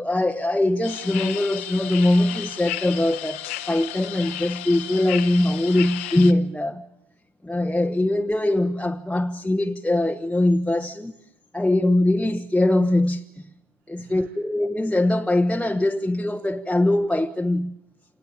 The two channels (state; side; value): normal; both; correlation 0.95